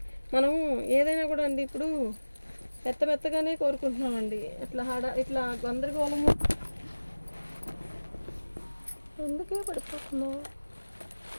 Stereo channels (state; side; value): inverted; both; correlation -1.00